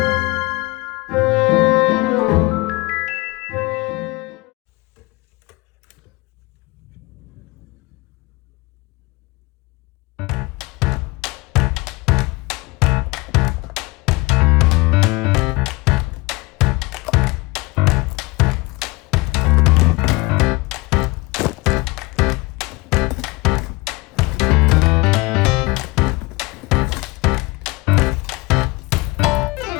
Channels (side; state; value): right; quieter; 23.8 dB